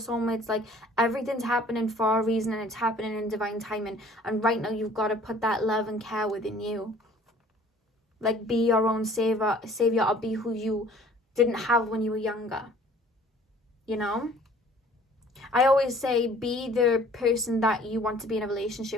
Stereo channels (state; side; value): normal; both; correlation 0.53